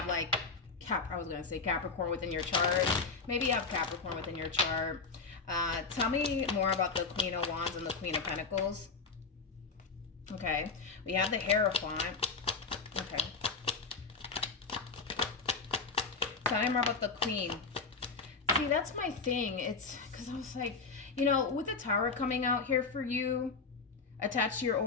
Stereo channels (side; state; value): right; quieter; 4.5 dB